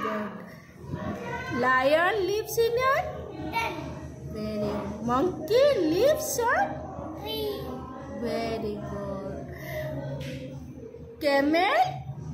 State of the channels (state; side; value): identical; both; correlation 1.00